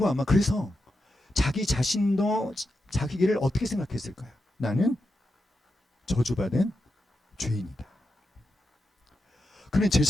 아마 그래서 자기 자신도 자기를 어떻게 생각했을까요? 나는 저주받은 죄인이다. 그런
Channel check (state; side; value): normal; both; correlation 0.87